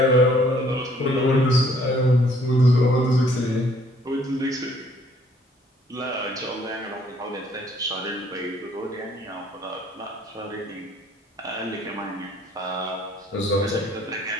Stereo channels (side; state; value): both; normal; correlation 0.61